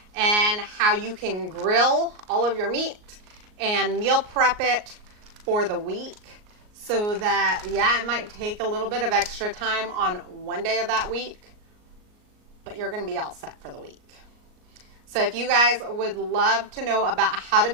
and how you can grill all of your meat and meal prep it for the week, so that, yeah, it might take a little bit of extra time on one day of that week, but you're going to be all set for the week. So if you guys would love to know about how to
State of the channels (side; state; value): left; late; 38 ms